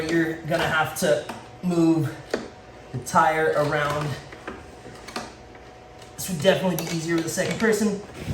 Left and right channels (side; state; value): both; identical; correlation 1.00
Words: gonna have to move the tire around. This would definitely be easier with the second person.